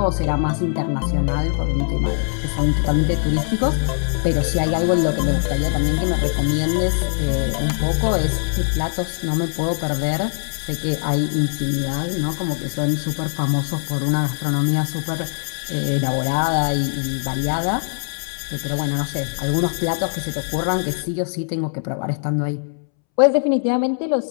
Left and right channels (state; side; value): silent; right; 65 dB below the other